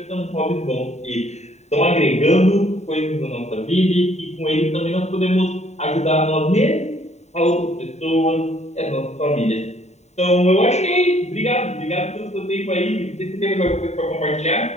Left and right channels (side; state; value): right; late; 0.32 ms